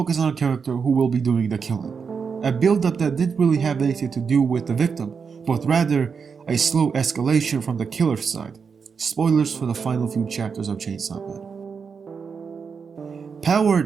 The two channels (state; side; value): quieter; left; 5.9 dB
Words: on a character who will be doing the killing. A build-up that didn't really have anything to do with the victim, but rather a slow escalation from the killer's side. Spoilers for the final few chapters of Chainsaw Man. Power